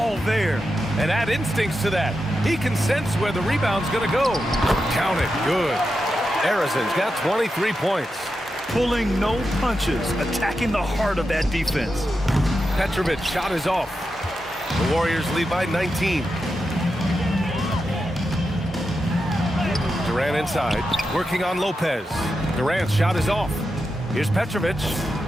there. And add instincts to that. He can sense where the rebound's going to go. Count it. Good. Arizon's got 23 points. Pulling no punches, attacking the heart of that defense. Petrovic's shot is off. The Warriors lead by 19. Durant inside, working on Lopez. Durant's shot is off. Here's Petrovic.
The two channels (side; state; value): both; normal; correlation 0.88